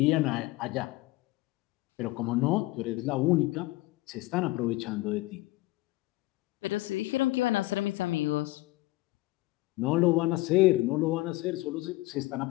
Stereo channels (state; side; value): quieter; right; 19.5 dB